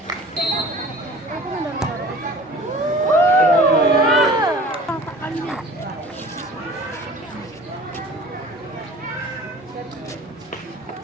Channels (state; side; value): normal; both; correlation 0.44